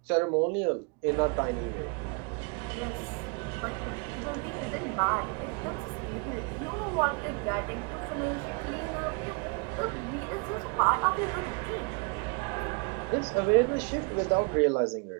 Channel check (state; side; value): quieter; left; 33.3 dB